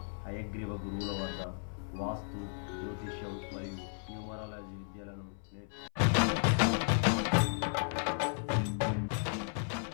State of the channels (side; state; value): right; silent; 55 dB below the other